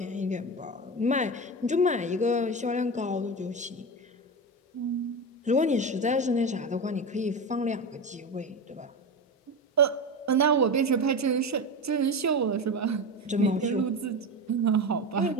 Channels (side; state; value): both; normal; correlation 0.21